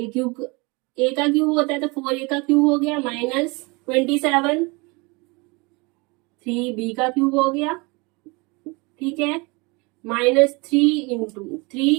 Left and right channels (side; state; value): left; quieter; 27.5 dB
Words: ए का क्यूब होता है, तो 4a का क्यूब हो गया माइनस 27 3b का क्यूब हो गया। ठीक है, माइनस 3 इंटू